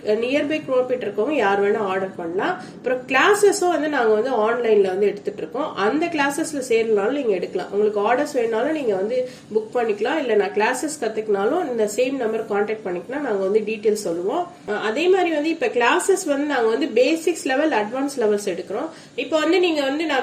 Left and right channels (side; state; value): both; identical; correlation 1.00